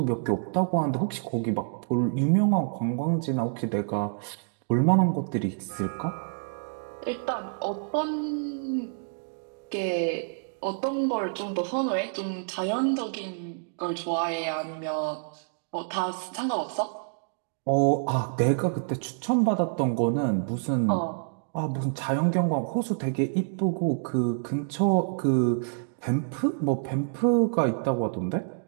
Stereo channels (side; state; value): left; silent; digital silence